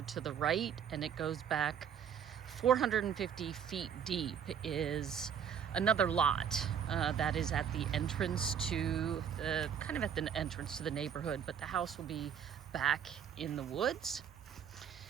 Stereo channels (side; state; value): left; quieter; 8.2 dB